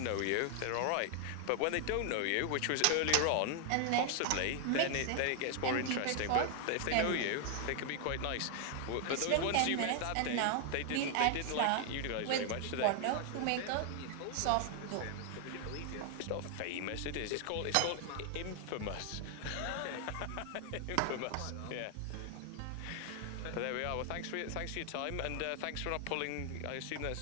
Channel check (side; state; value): both; different; correlation 0.00